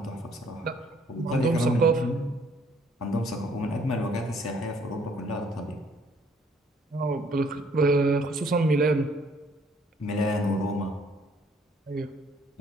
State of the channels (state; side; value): normal; both; correlation 0.63